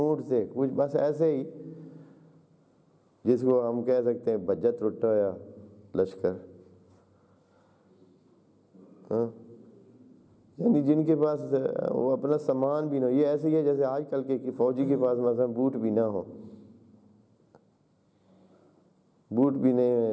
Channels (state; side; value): identical; both; correlation 1.00